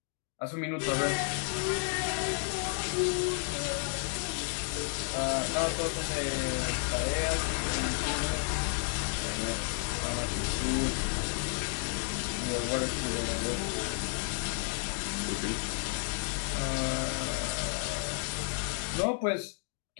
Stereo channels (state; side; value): silent; right; 56 dB below the other